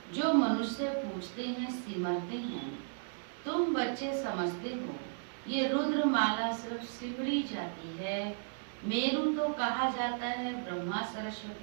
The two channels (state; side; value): silent; left; digital silence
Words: जो मनुष्य पूछते हैं सिमरते हैं। तुम बच्चे समझते हो ये रुद्र माला सिर्फ सिमरी जाती है। मेरू तो कहा जाता है ब्रह्मा